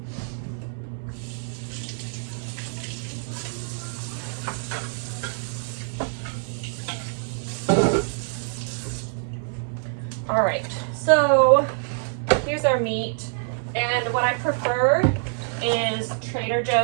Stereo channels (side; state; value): left; silent; 61 dB below the other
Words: All right, so here's our meat. And what I prefer is Trader